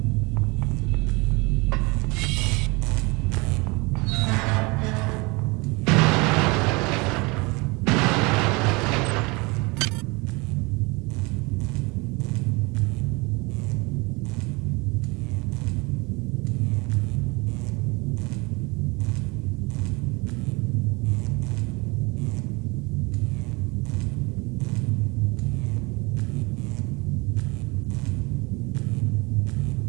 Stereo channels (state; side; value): quieter; left; 26.5 dB